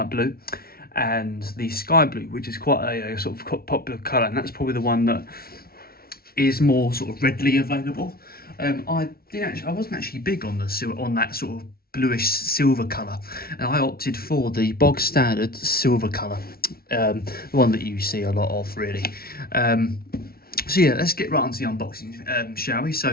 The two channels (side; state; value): right; late; 0.44 ms